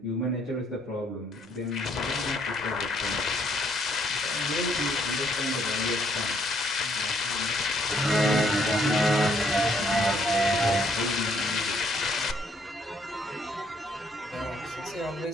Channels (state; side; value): normal; both; correlation 0.68